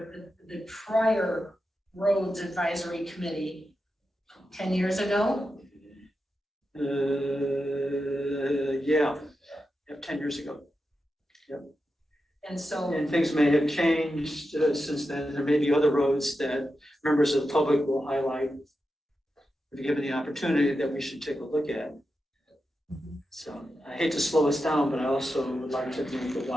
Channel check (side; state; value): both; normal; correlation 0.89